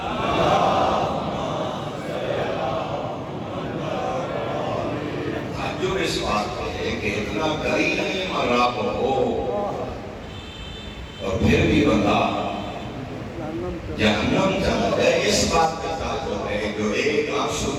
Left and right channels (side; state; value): both; identical; correlation 1.00